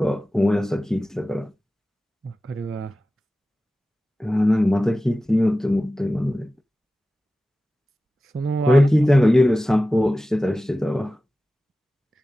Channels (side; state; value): both; normal; correlation 0.96